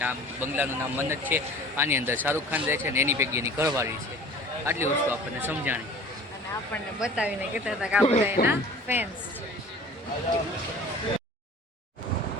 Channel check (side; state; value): both; normal; correlation 0.44